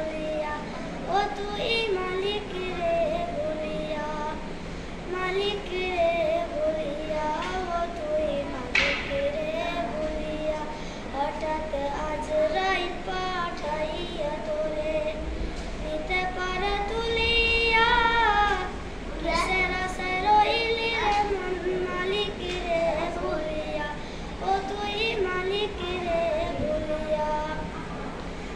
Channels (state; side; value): identical; both; correlation 1.00